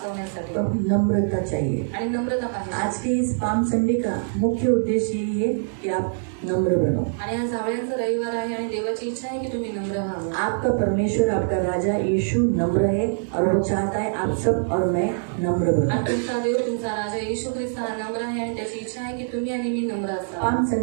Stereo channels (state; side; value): silent; left; digital silence